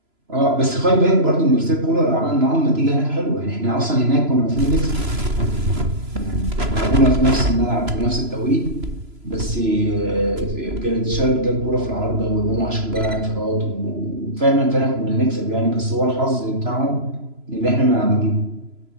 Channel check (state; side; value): late; left; 3.0 ms